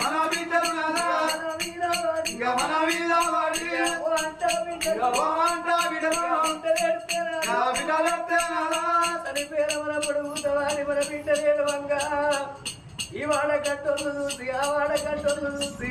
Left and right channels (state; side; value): identical; both; correlation 1.00